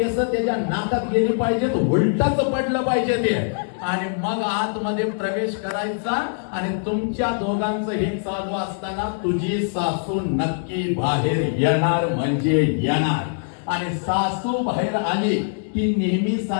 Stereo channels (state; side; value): silent; right; digital silence